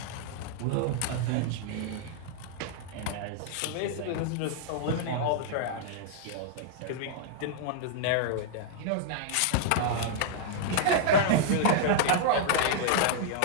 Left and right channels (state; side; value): different; both; correlation -0.01